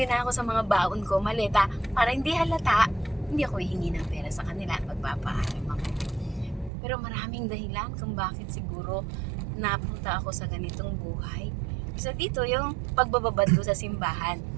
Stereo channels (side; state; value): left; drops out; at 6.7 s